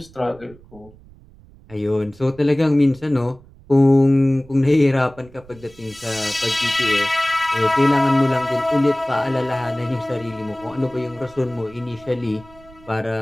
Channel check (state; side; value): noise; right; rumble, 24 dB below the sound